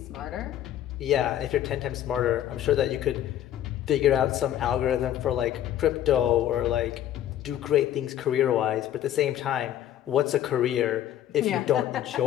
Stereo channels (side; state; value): right; quieter; 11.6 dB